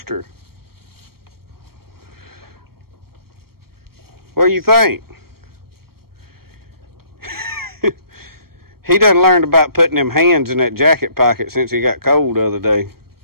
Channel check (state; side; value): late; left; 0.94 ms